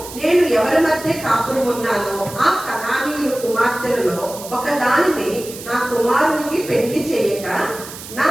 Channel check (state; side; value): noise; right; hiss, 13 dB below the sound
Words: నేను ఎవరి మధ్య కాపురం ఉన్నానో ఆ కనానీయుల కుమార్తెలలో ఒకదానిని నా కుమారునికి పెళ్లి చేయక నా